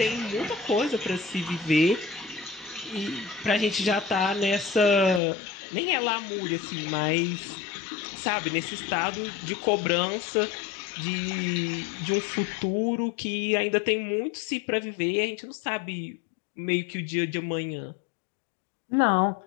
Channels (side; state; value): right; drops out; at 5.2 s